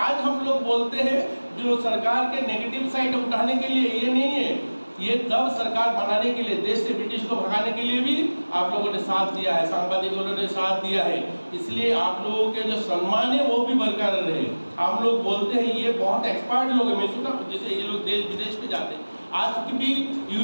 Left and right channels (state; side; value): inverted; both; correlation -1.00